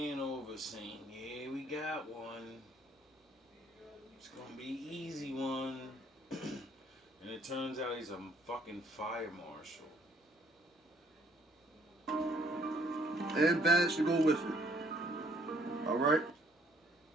in over saying, yeah, we got one. It's gonna be an easy one. And it turns out he's a fucking fire marshal. And badge to go with it. All right.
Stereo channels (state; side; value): normal; both; correlation 0.63